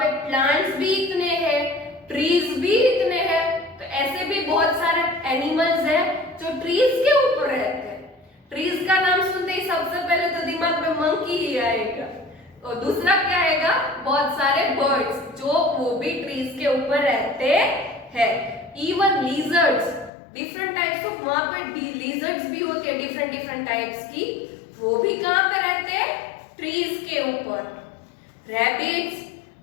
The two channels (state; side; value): drops out; right; at 20.1 s